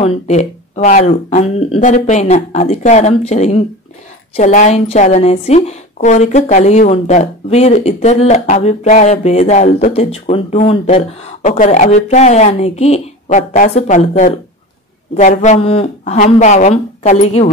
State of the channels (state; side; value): normal; both; correlation 0.31